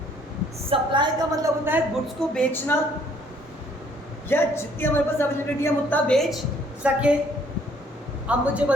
सप्लाई का मतलब होता है गुड्स को बेचना, या जितनी हमारे पास अवेलेबिलिटी हम उतना बेच सके। अब मुझे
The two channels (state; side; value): normal; both; correlation 0.62